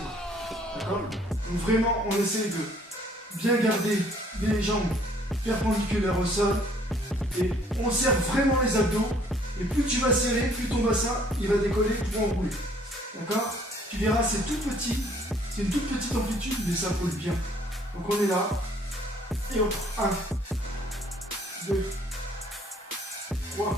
D'accord? Donc vraiment, on essaie de bien garder les jambes perpendiculaires au sol. Et on serre vraiment les abdos. Et plus tu vas serrer, plus ton bassin, il va décoller pour enrouler. D'accord? Tu verras, c'est tout petit. C'est une toute petite amplitude, mais ça colle bien. Donc on est là. Et on prend 1, 2,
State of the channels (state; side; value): normal; both; correlation 0.60